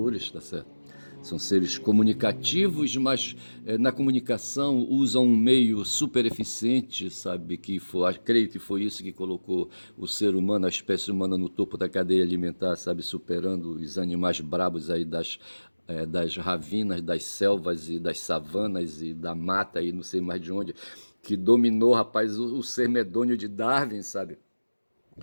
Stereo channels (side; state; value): both; inverted; correlation -1.00